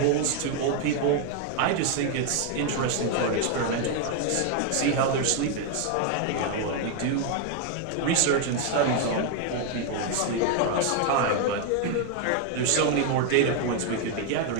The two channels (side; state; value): both; different; correlation 0.01